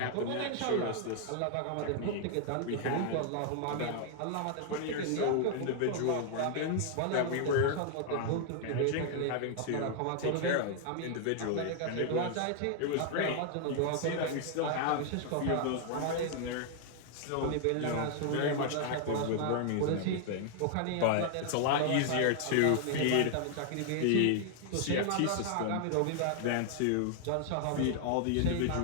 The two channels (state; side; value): different; both; correlation 0.00